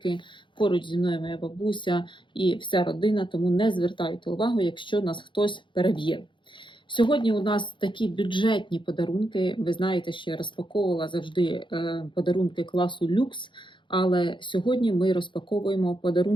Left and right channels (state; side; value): late; right; 0.23 ms